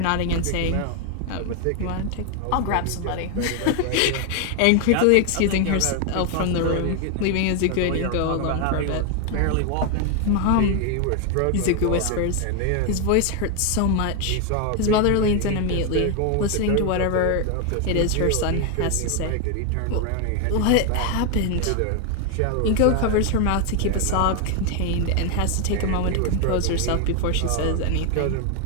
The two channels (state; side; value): different; both; correlation 0.01